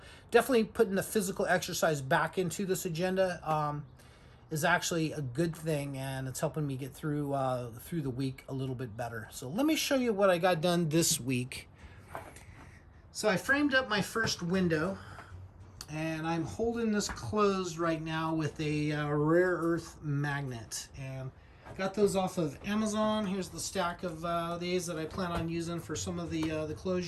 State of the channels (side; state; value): both; identical; correlation 1.00